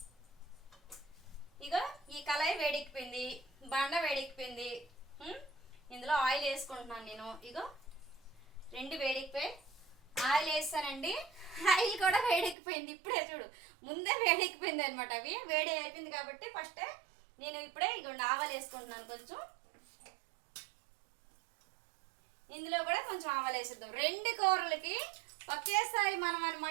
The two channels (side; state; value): left; drops out; at 12.6 s